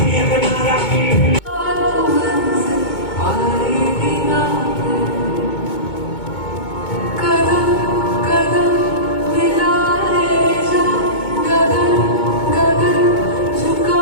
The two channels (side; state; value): right; late; 2.2 ms